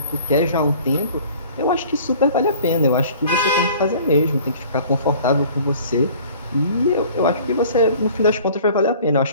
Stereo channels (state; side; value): inverted; both; correlation -0.49